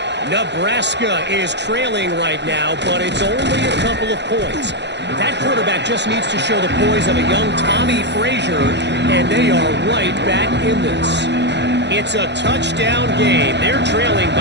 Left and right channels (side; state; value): left; late; 0.51 ms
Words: Nebraska is trailing right now, but it's only a couple of points. That quarterback just needs to show the poise of a young Tommy Frazier, and they are right back in this. It's a touchdown game. They're trailing